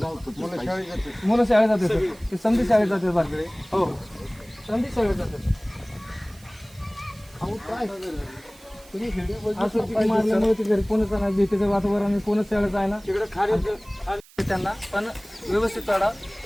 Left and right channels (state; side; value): noise; right; hiss, 25 dB below the sound